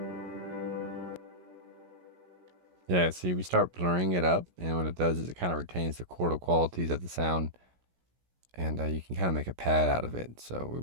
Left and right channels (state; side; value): late; left; 17 ms